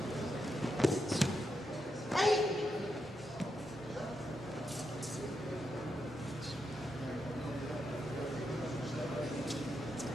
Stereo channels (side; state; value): both; normal; correlation 0.84